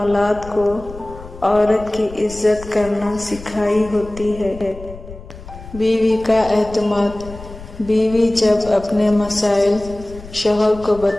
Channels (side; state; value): left; noise; rumble, 16 dB below the sound